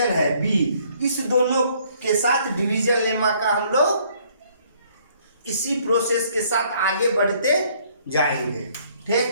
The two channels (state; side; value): inverted; both; correlation -0.63